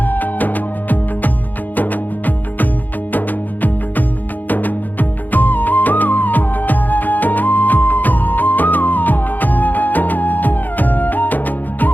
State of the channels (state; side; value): late; right; 0.085 ms